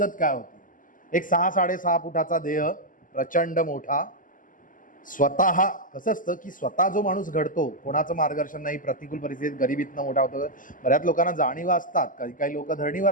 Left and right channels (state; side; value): late; right; 0.38 ms